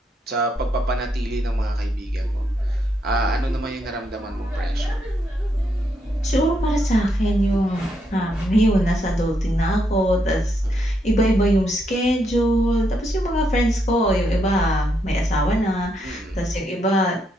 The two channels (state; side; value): normal; both; correlation 0.78